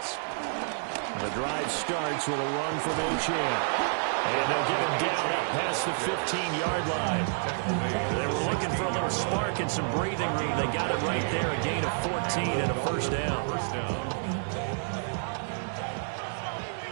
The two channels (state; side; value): silent; left; 58 dB below the other